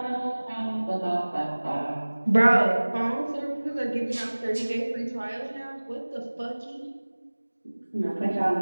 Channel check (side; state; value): both; inverted; correlation -1.00